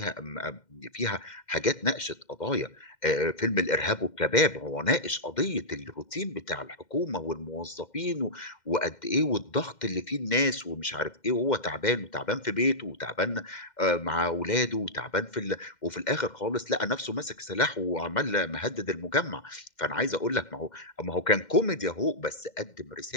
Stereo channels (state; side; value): late; right; 2.1 ms